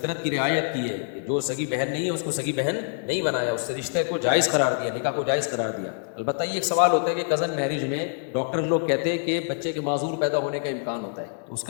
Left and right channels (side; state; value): right; silent; digital silence